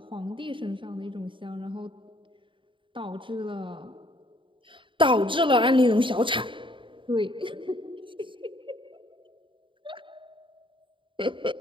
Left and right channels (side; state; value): left; late; 0.24 ms